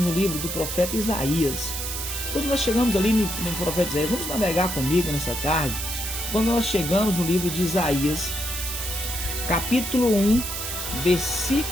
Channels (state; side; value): noise; right; hiss, 5 dB below the sound